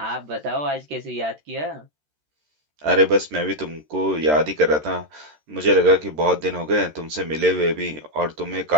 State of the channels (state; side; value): late; left; 13 ms